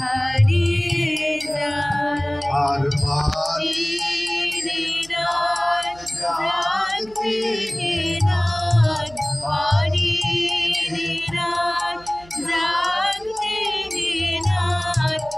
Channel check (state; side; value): noise; right; hum, 24 dB below the sound